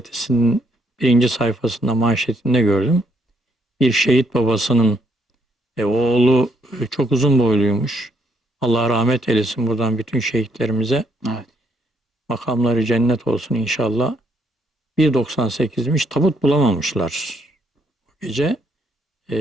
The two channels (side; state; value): both; normal; correlation 0.72